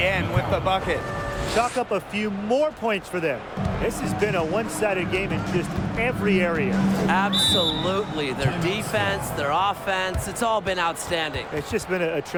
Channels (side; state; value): both; identical; correlation 1.00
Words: with the bucket. Chalk up a few more points for them. This has been a one-sided game in just every area. Absolutely. Their defense, their offense, it's all been outstanding. It's just been a